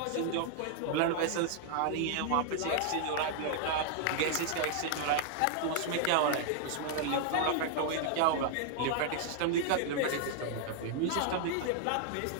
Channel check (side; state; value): both; different; correlation 0.00